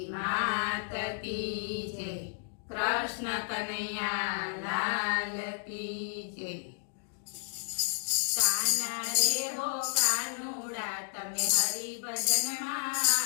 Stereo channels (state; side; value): silent; right; digital silence